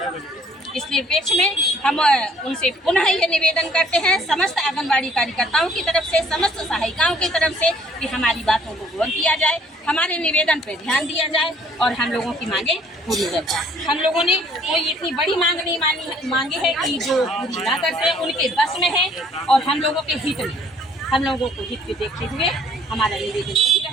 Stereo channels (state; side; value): normal; both; correlation 0.59